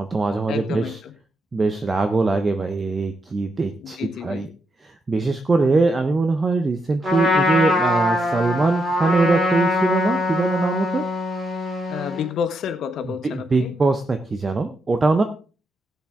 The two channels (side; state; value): both; normal; correlation 0.81